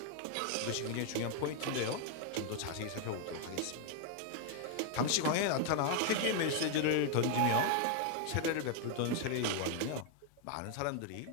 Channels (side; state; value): both; different; correlation 0.01